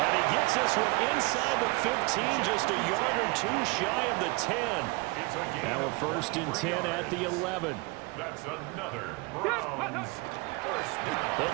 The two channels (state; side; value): quieter; left; 26.7 dB